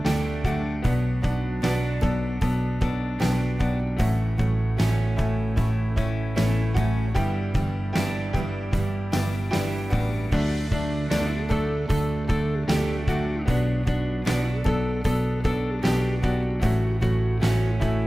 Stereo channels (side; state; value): both; normal; correlation 0.96